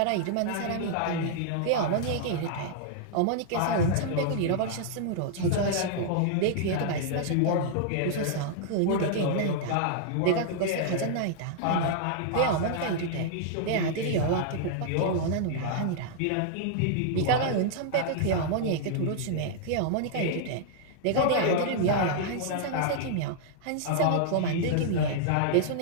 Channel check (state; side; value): different; both; correlation -0.01